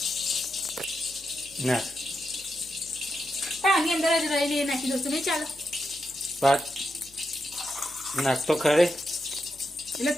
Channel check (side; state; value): left; noise; hum, 26 dB below the sound